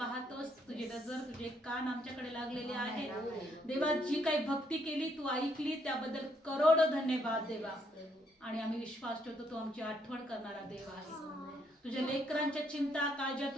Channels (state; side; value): normal; both; correlation 0.72